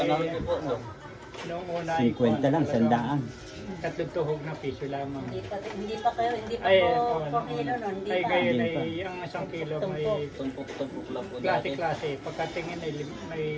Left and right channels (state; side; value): identical; both; correlation 1.00